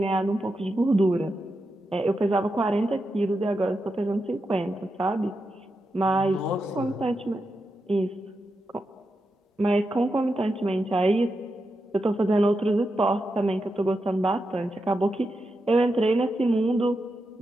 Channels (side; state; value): both; normal; correlation 0.87